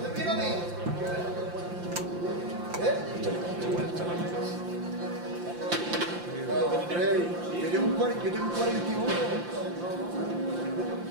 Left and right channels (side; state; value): left; late; 5.8 ms